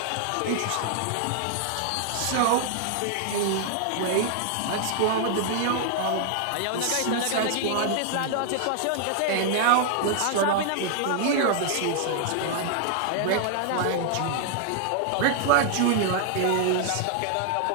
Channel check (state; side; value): different; both; correlation 0.00